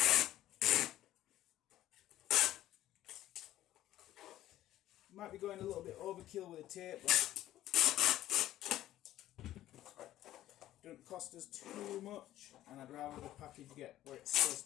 Might be going a little bit overkill with the tape, but don't cost us too much, and I'd rather the package get where it's supposed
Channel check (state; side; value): quieter; right; 13.8 dB